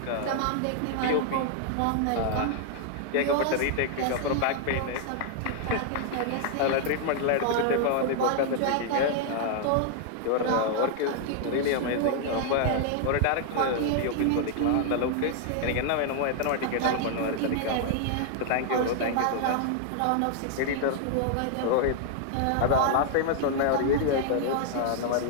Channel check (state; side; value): different; both; correlation 0.00